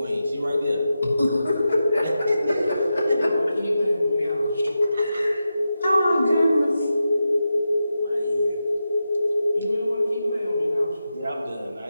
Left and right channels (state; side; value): inverted; both; correlation -0.90